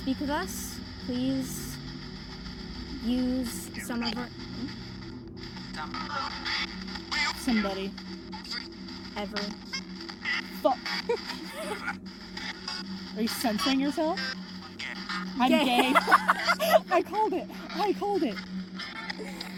with us, please use some of our... Somebody. Every... Fuck. Are you censoring yourself? I'm gay. I called it.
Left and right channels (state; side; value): identical; both; correlation 1.00